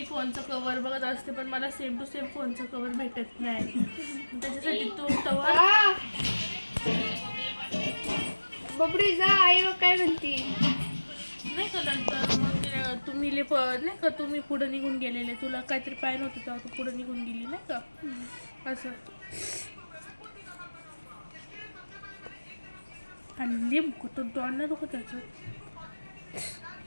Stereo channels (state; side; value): inverted; both; correlation -1.00